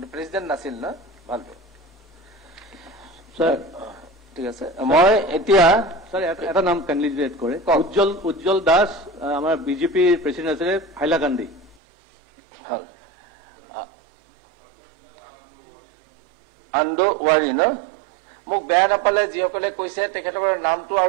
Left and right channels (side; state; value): left; drops out; at 11.8 s